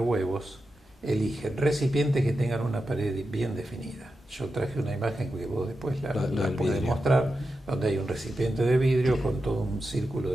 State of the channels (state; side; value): normal; both; correlation 0.90